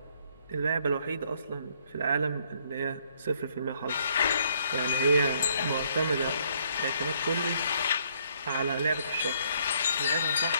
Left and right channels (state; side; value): inverted; both; correlation -0.67